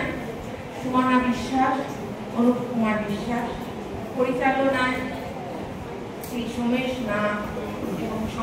সুমনা বিশ্বাস, অনুপ কুমার বিশ্বাস, পরিচালনায় শ্রী সোমেশ নাথ এবং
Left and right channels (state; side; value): identical; both; correlation 1.00